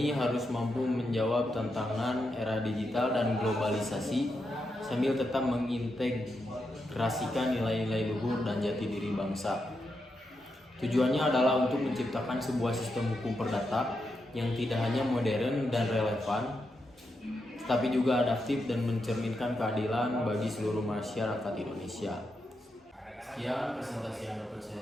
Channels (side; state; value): both; normal; correlation 0.85